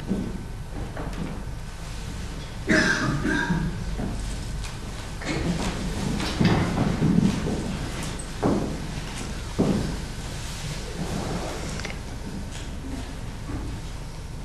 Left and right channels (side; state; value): both; identical; correlation 1.00